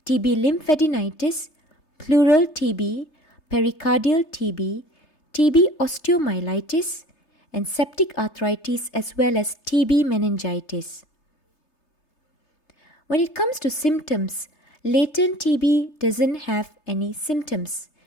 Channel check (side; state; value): right; late; 3.3 ms